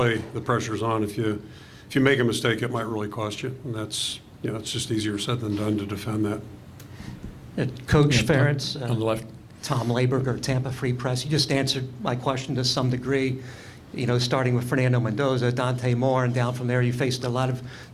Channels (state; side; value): identical; both; correlation 1.00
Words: the pressure's on. If you make a mistake, it might really cost you, and that's, you know, it's just easier said than done to defend that. Coach Ferentz, On the left. Tom Laberger, Tampa Free Press. You just answered my question to some degree. You know, starting with Fernando Mendoza, Dante Moore, and down from there, you faced a lot of